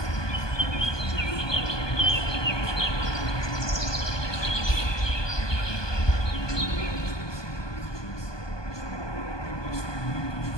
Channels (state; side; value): late; right; 1.2 ms